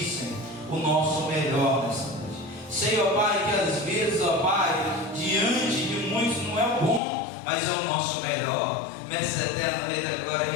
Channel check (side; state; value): right; drops out; at 7.0 s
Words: Senhor, o nosso melhor nessa noite. Senhor, Pai, que às vezes, ó Pai, diante de muitos não é o bom, mas é o nosso melhor. Mestre eterno, Rei da Glória,